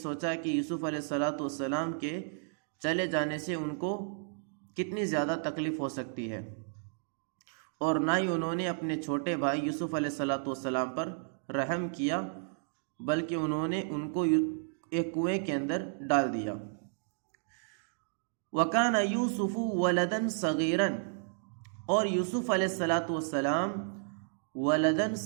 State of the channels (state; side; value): silent; left; digital silence